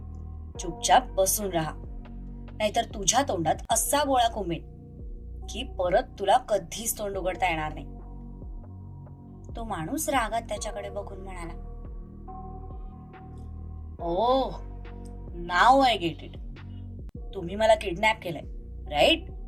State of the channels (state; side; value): identical; both; correlation 1.00